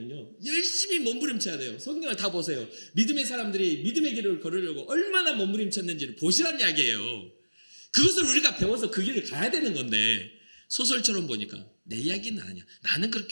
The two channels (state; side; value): inverted; both; correlation -1.00